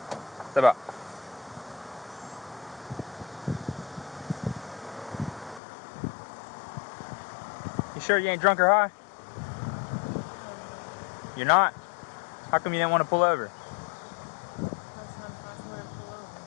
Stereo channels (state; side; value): drops out; right; at 5.6 s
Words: Step up. You sure you ain't drunk or high? You're not? How come you didn't want to pull over?